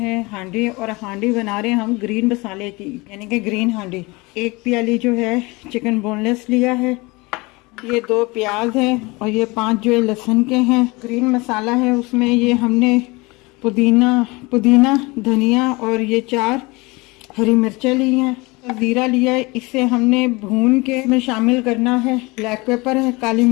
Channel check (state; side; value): quieter; right; 24.6 dB